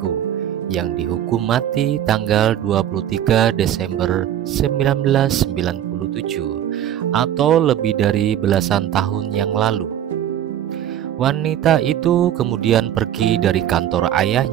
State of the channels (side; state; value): left; quieter; 10.8 dB